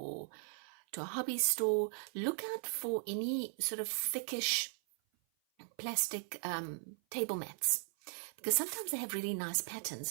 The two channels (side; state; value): left; silent; 52 dB below the other